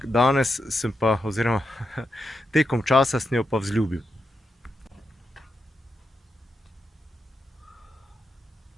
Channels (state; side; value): normal; both; correlation 0.85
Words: danes sem pa, oziroma tekom časa sem jo pa vzljubil.